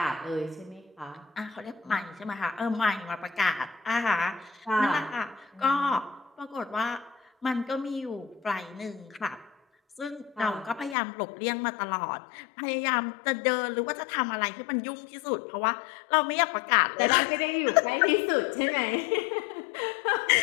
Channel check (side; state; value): right; drops out; at 11.0 s